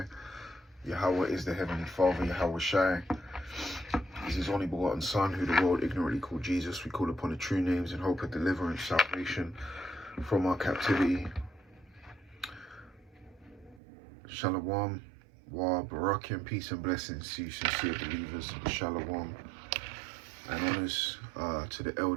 Yahweh is the Heavenly Father, Yahweh Shai is his only begotten Son, who the world ignorantly called Jesus. We call upon the true names in hope of deliverance, salvation from our captivity. Shalom, wa barakim, peace and blessings to you sincere believers. Shalom. And honors to the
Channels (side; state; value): left; drops out; at 13.8 s